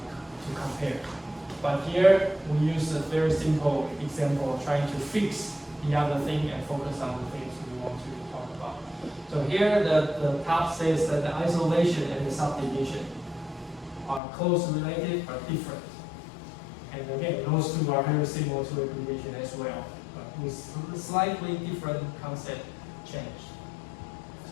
compare. But here, we use a very simple example trying to fix the other thing and focus on the things we want to talk about. So here, the top says that the isolation and the subdivision are close related but different. And again, those two are very similar to aggregation as well, but with slightly different concept change.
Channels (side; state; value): right; drops out; at 14.2 s